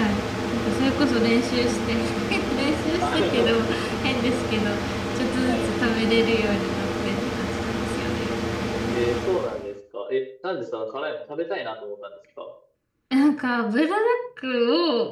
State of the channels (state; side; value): identical; both; correlation 1.00